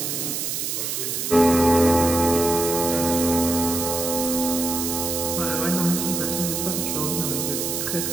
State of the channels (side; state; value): right; noise; hiss, 2 dB below the sound